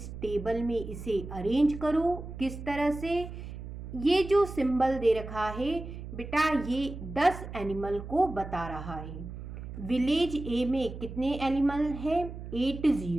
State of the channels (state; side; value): noise; right; hum, 10 dB below the sound